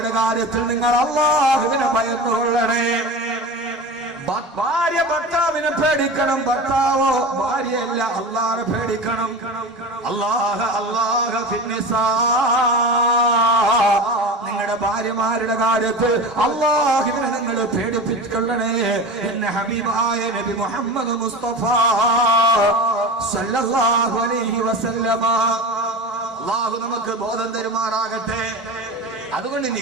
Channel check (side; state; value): both; normal; correlation 0.30